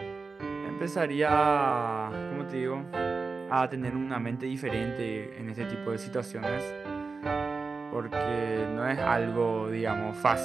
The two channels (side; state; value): left; quieter; 4.3 dB